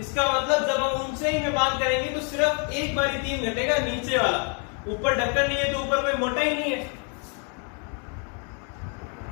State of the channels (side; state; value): right; quieter; 39.2 dB